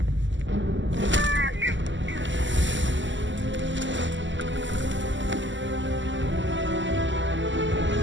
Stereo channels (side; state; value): left; late; 0.54 ms